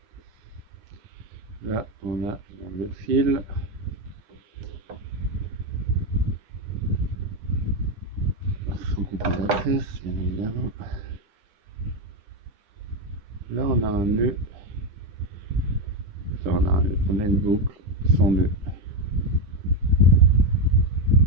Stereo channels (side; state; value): left; late; 9.8 ms